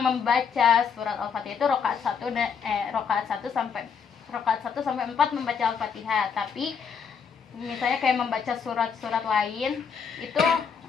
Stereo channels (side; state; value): right; quieter; 6.5 dB